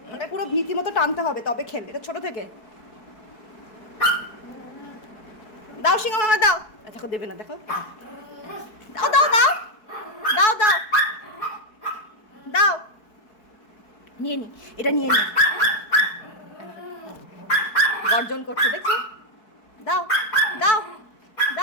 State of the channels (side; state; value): right; late; 4.6 ms